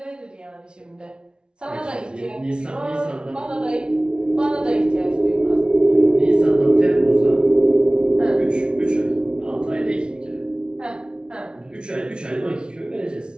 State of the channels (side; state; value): left; late; 0.055 ms